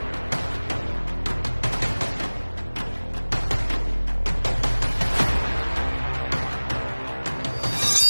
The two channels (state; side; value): inverted; both; correlation -1.00